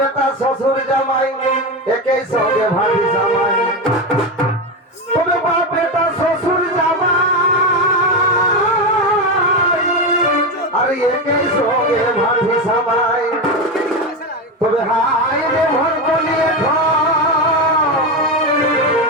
শ্বশুর জামাই একই সঙ্গে ভাবি জামাই। তবে বাপ বেটা শ্বশুর জামাই আর একই সঙ্গে ভাবি জামাই। তবে হাই রে ভর বলিয়ে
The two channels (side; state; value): both; normal; correlation 0.15